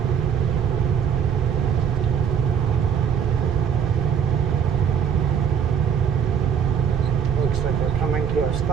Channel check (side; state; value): left; quieter; 7.6 dB